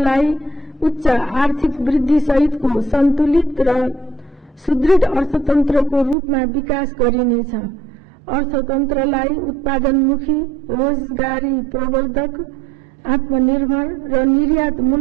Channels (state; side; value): drops out; left; at 6.2 s